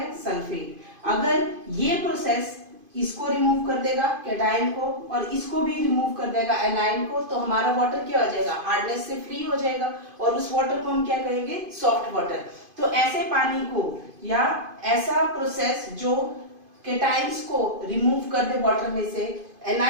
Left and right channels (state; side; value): late; left; 2.5 ms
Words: सल्फेट. अगर ये प्रोसेस इसको रिमूव कर देगा केटाइन को और इसको भी रिमूव कर देगा एनाइन को, तो हमारा वाटर क्या हो जाएगा, हार्डनेस से फ्री हो जाएगा और उस वाटर को हम क्या कहेंगे, सॉफ्ट वाटर. तो ऐसे पानी को या ऐसा प्रोसेस जो केटाइंस को रिमूव कर दे वाटर में से,